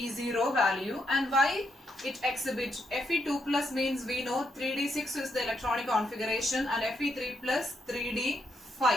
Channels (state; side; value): normal; both; correlation 0.79